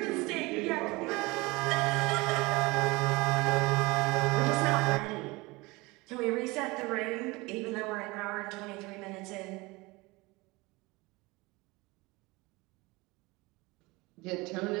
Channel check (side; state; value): left; quieter; 23.2 dB